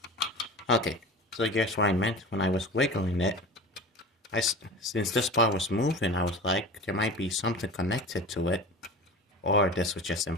Okay, so guess what I meant when I was wiggling it. Since this part was moving, I was like, there might be something connected to it, or this was just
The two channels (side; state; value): both; normal; correlation 0.34